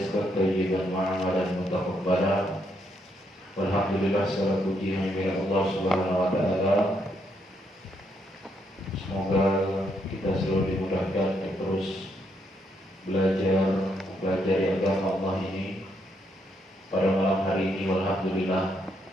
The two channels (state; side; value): normal; both; correlation 0.76